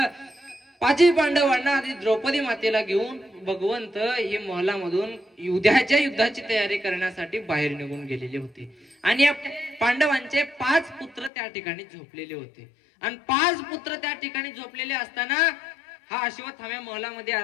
पाची पांडवांना आधी द्रौपदी मातेला घेऊन भगवंत हे महलामधून उद्याच्या युद्धाची तयारी करण्यासाठी बाहेर निघून गेलेले होते. आणि या पांडवांचे 5 पुत्र त्या ठिकाणी झोपलेले होते. आणि 5 पुत्र त्या ठिकाणी झोपलेले असताना हा अश्वत्थाम्या महलामध्ये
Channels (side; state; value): right; drops out; at 11.3 s